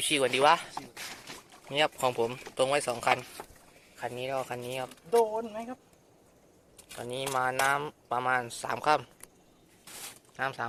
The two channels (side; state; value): both; identical; correlation 1.00